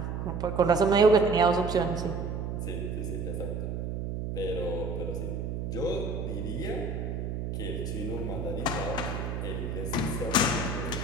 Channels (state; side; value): noise; right; hum, 3 dB below the sound